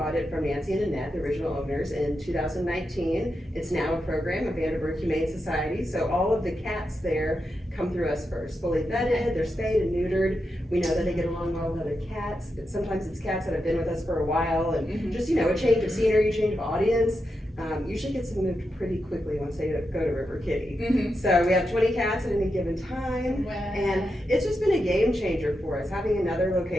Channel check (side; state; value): both; normal; correlation 0.87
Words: it from Nancy and Annette, the original owners, in 2019. It's now a program of Vanderburgh Humane Society, so all of the cats there come through us first, fully vetted, they're spayed and neutered. We know that they get along well with other cats, but sometimes it's cats that have been with us for a while, and Mhm. just, you know, a change of scenery, change of audience. Usually gets them moved pretty quickly once they go to River Kitty. Mhm. So we have 20 cats at any given time, Wow. and it's just been a game changer for us, having another